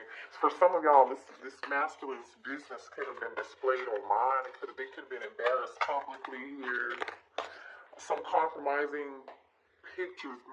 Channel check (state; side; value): identical; both; correlation 1.00